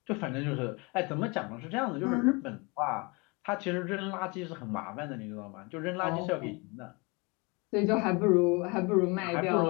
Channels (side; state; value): right; quieter; 28.5 dB